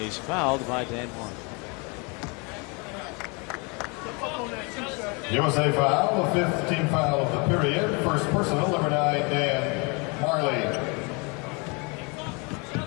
he's fouled by Dan Majerle. USA foul, the 5th team foul of the period. First personal, number 9, Dan Majerle.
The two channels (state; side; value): quieter; right; 30.9 dB